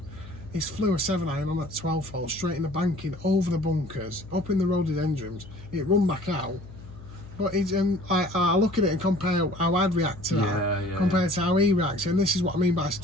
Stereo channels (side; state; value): left; noise; hum, 16 dB below the sound